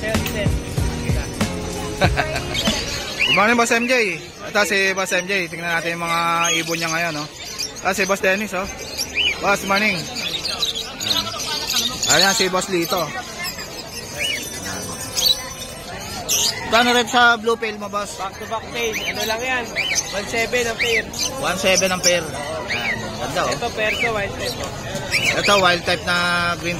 Good morning boss MJ. Ito si boss MJ, tingnan natin yung mga ibon niya ngayon, no? Ito si boss Dennis, oh. Boss, morning. Ayan si boss Lito. Kano rep sa blue pail mo, boss? Back to back pail. Ano lang yan? 1.7 ang pair. 1.7 ang pair. Ayan, ganda, oh. Ito perso, wild type. Ito wild type na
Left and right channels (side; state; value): both; identical; correlation 1.00